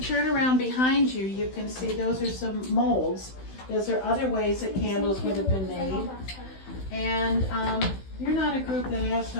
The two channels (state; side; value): late; right; 16 ms